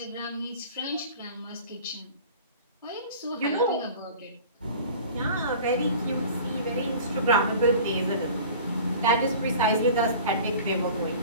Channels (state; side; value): inverted; both; correlation -0.42